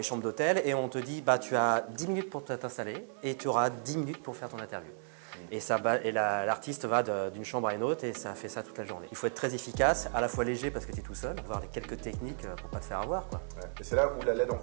chambres d'hôtel et on te dit, bah tu as 10 minutes pour t'installer et tu auras 10 minutes pour faire ton interview. Et, l'artiste va d'une chambre à une autre et ça fait ça toute la journée. Il faut être très efficace, à la fois léger parce que tu es tout seul, voir les quelques techniques pour pas te faire avoir, quoi. Ouais. Et c'est là où la LED en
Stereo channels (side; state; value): left; silent; 55 dB below the other